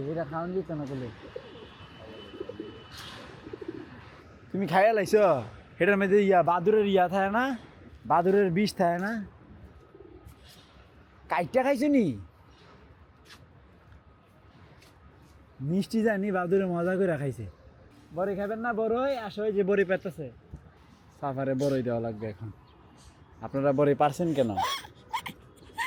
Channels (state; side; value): identical; both; correlation 1.00